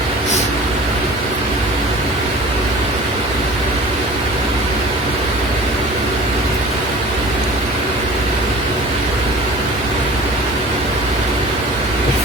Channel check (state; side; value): normal; both; correlation 0.42